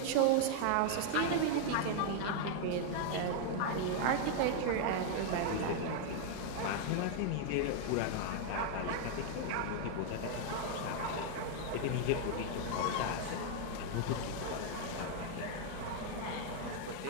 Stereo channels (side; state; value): both; different; correlation 0.00